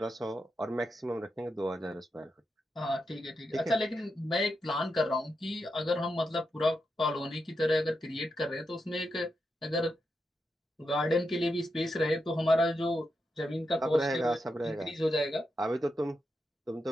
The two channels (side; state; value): both; normal; correlation 0.86